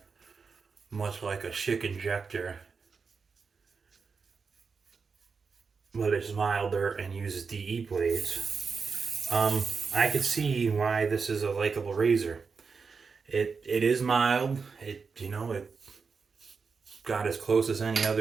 much like a Schick injector, but it's milder and uses DE blades. I could see why this is a likable razor. It is mild. It got as close as any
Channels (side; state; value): left; quieter; 5.2 dB